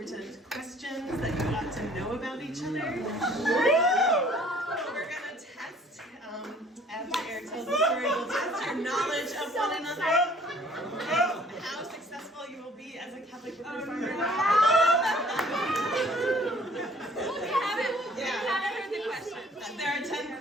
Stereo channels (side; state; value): both; normal; correlation 0.56